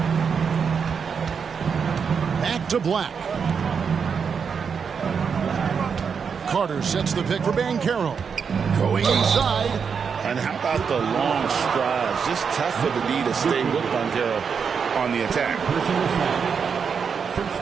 Back to Black. Carter sets the pick for Banchero. Going inside. And how about the long strides? Just tough for the D to stay with Banchero on the attack.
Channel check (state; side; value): quieter; left; 6.3 dB